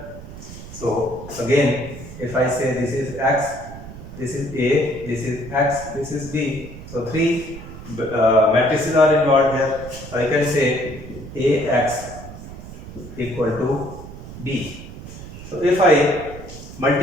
So again, if I say this is x, this is A, this is x, this is B. So three matrices are involved here. So I can say AX equal to B. So if I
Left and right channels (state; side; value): noise; right; rumble, 13 dB below the sound